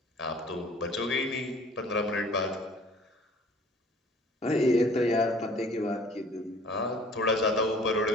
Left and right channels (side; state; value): both; normal; correlation 0.51